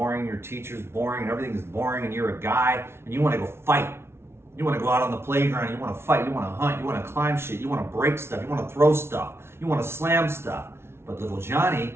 your teacher's boring, and everything's boring, and you're a guy, and you want to go fight. You want to go out on the playground, you want to fight, you want to hunt, you want to climb shit, you want to break stuff, you want to throw stuff, you want to slam stuff. But little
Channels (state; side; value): late; left; 0.12 ms